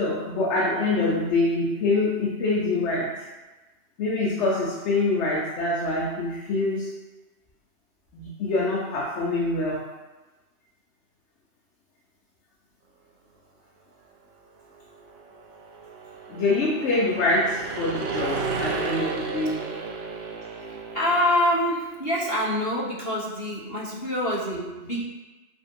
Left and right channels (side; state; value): right; late; 2.8 ms